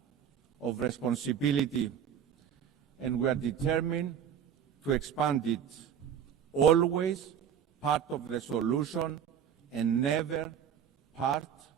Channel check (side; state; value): left; quieter; 8.6 dB